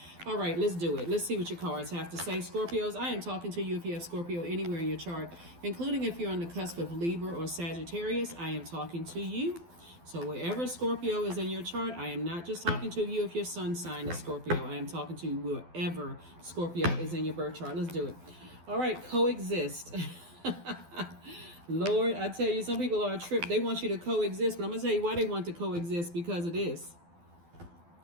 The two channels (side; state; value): left; late; 12 ms